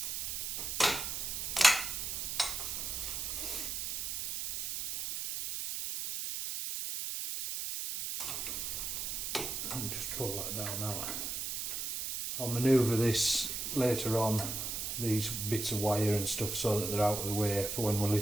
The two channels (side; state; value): right; noise; hiss, 3 dB below the sound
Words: And just pull that down now. I'll manoeuvre this later on, these bits of wire and stuff, so that they're out of the way for when we